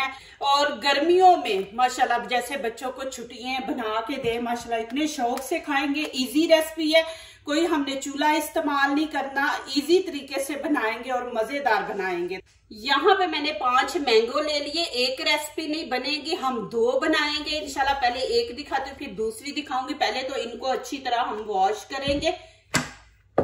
और गर्मियों में माशाल्लाह जैसे बच्चों को छुट्टियां बना के दे, माशाल्लाह इतने शौक से खाएंगे। इजी रेसिपी है, कोई हमने चूल्हा इस्तेमाल नहीं करना, इजी तरीके से बनाएंगे और मजेदार बनाएंगे। यहाँ पे मैंने 5 मैंगो ले लिए। एक रेसिपी नहीं बनेगी, हम 2 बनाएंगे इंशाल्लाह। पहले एक दिखाती हूँ फिर दूसरी दिखाऊंगी। पहले तो इनको अच्छी तरह हम वॉश करेंगे।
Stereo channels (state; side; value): identical; both; correlation 1.00